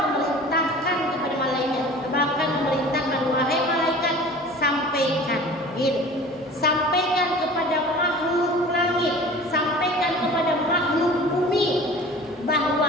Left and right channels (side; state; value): both; normal; correlation 0.42